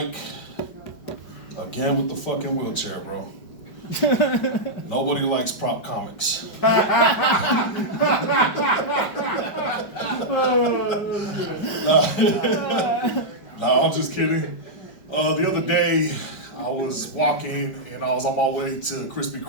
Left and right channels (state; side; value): late; right; 5.2 ms